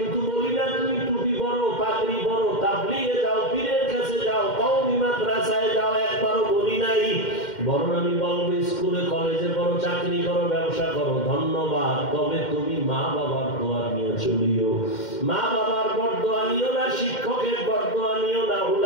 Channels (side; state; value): right; late; 2.1 ms